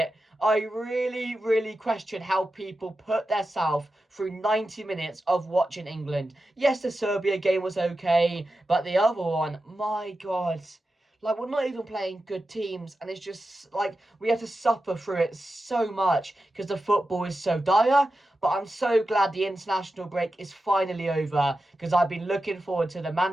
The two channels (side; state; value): both; normal; correlation 0.91